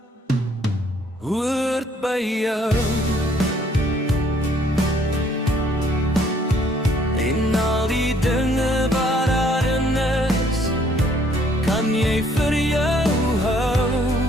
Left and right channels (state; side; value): normal; both; correlation 0.63